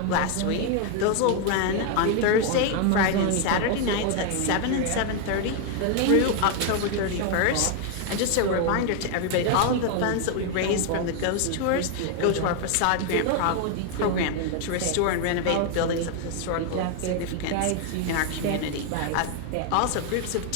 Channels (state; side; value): different; both; correlation 0.00